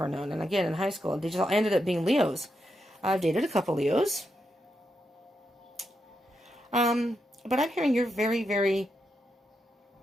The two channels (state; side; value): normal; both; correlation 0.84